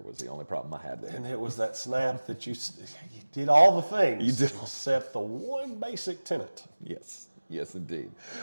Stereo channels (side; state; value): both; inverted; correlation -1.00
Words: was the only problem I had there. And it was that snap that you did all the things. You did. Except the one basic tenet. Yes, indeed.